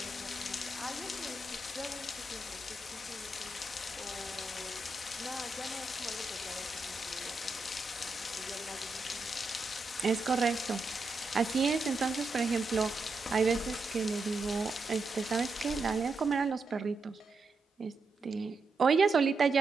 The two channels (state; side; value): quieter; left; 3.3 dB